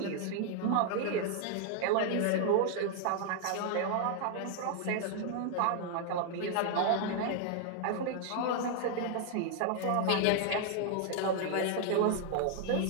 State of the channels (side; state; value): both; different; correlation 0.00